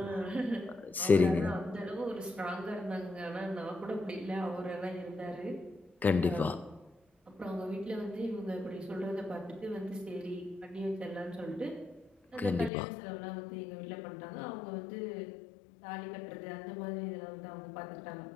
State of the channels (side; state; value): right; drops out; at 12.7 s